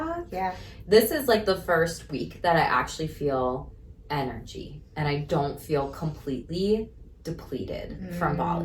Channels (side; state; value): both; identical; correlation 1.00